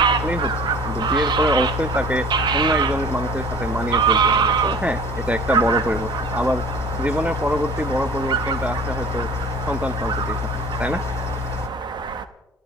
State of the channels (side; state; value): both; normal; correlation 0.45